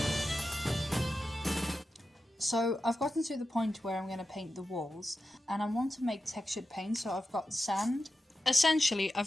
So I've gotten to the point where I'm going to paint the walls, and I want to make textured paint, so I've got sand essentially,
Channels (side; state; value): both; normal; correlation 0.92